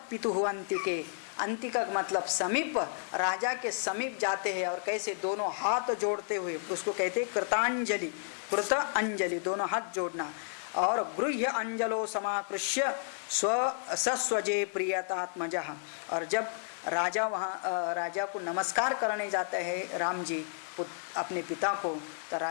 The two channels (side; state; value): right; silent; digital silence